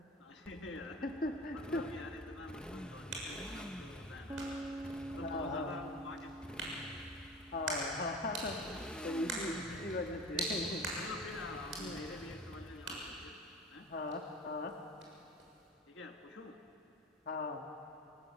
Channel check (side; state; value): both; normal; correlation 0.36